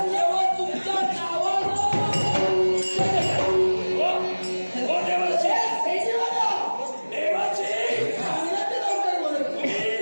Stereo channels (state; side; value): inverted; both; correlation -1.00